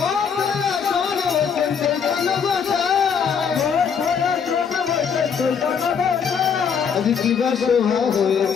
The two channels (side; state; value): right; quieter; 6.8 dB